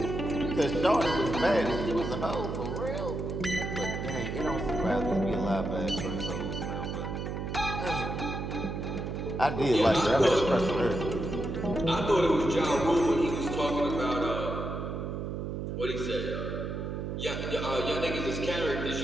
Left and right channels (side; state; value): right; noise; hum, 4 dB below the sound